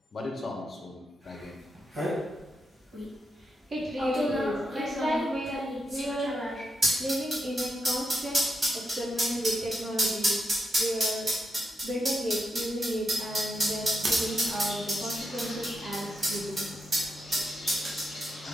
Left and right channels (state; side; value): normal; both; correlation 0.83